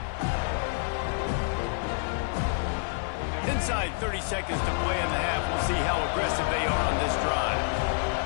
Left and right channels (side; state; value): right; silent; 59 dB below the other